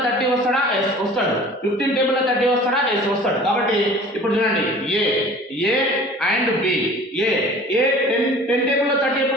30 వస్తాడా? ఎస్ వస్తాడు. 15 టేబుల్ లో 30 వస్తాడా? ఎస్ వస్తాడు. కాబట్టి ఇప్పుడు చూడండి, A and B. A 10 table లో 30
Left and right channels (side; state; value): both; normal; correlation 0.45